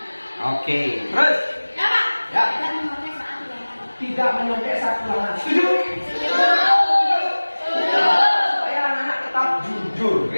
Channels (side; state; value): both; inverted; correlation -1.00